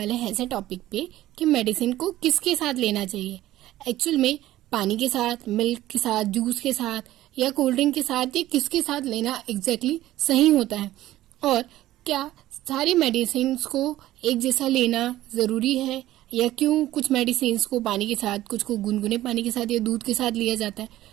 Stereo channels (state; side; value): quieter; left; 14.9 dB